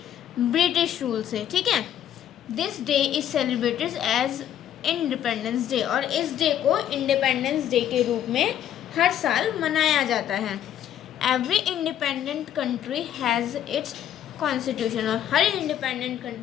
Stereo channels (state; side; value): quieter; right; 10.6 dB